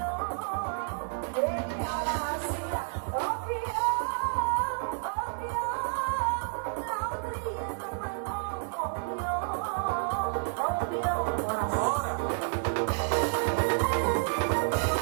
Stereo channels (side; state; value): left; silent; digital silence